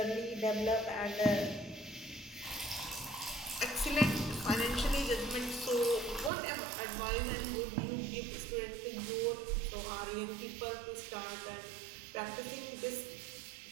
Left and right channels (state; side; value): drops out; left; at 6.3 s